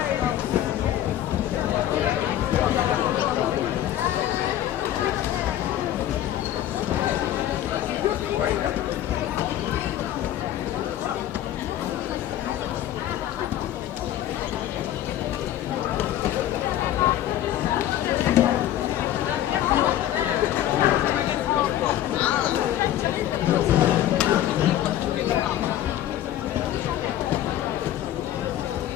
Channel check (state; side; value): quieter; right; 12.4 dB